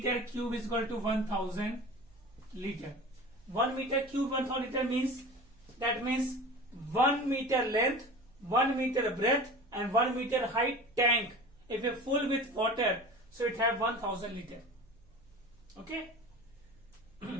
cube is equal to 1000 liter. 1 meter cube 1000 liter means, that means 1 meter length, 1 meter breadth, and 1 meter height tank. If you full with water, so it have 1000 liter. Okay.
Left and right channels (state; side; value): noise; right; hum, 28 dB below the sound